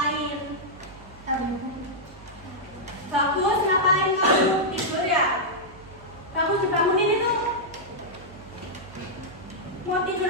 Bagus, ngapain kamu? Tidur ya? Bagus, dibangunin itu. Mau tidur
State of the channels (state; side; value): noise; right; hum, 20 dB below the sound